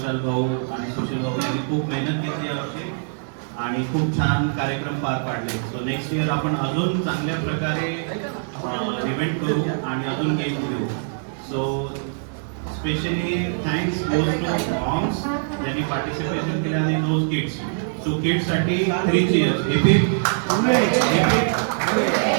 भाऊ आणि सुशील भाऊ यांनी खूप मेहनत घेतली यावर्षी आणि खूप छान कार्यक्रम पार पाडले. सो नेक्स्ट इयर आपण अजून चांगल्या प्रकारे इव्हेंट करू आणि अजून गेम घेऊ. So specially thanks goes to moms ज्यांनी पार्टिसिपेशन केलं आणि दोज किड्स. सो किड्ससाठी 3 cheers. Very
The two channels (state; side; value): silent; left; digital silence